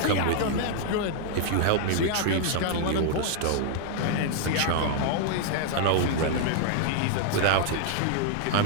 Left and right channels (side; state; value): both; different; correlation 0.00